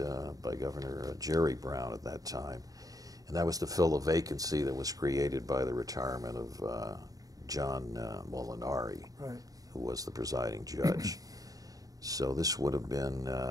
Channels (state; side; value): late; left; 0.17 ms